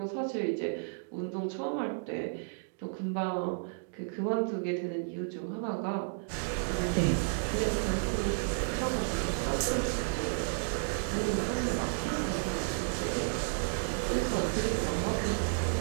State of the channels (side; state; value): left; silent; digital silence